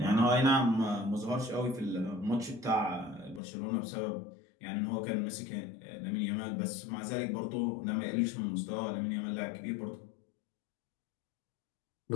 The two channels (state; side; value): drops out; right; at 3.4 s